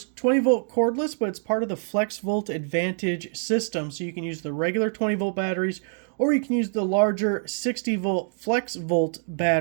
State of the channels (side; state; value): left; silent; 61 dB below the other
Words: 20-volt cordless, but it's part of the FLEXVOLT Advantage system, so you can use the regular 20-volt batteries or you can use the larger 60-volt FLEXVOLT